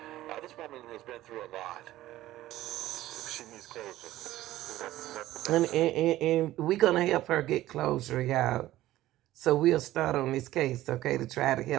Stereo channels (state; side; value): quieter; left; 15.2 dB